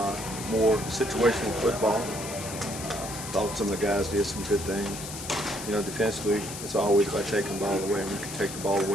more situational football. Thought some of the guys did some good things. Defensively, it's always about taking the ball away, and we can take the ball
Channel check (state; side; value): noise; left; hiss, 9 dB below the sound